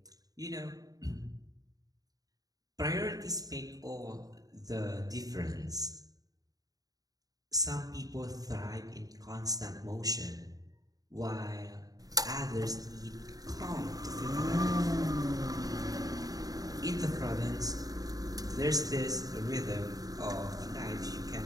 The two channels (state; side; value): late; left; 0.18 ms